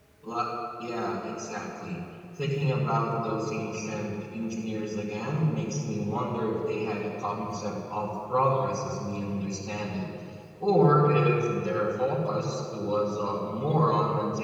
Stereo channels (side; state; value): both; identical; correlation 1.00